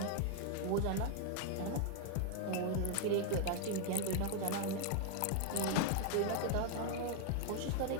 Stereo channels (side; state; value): both; different; correlation 0.00